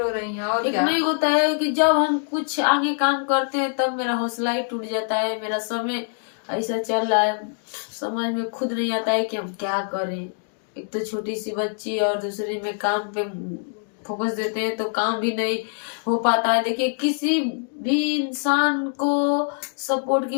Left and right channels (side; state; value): right; silent; 63 dB below the other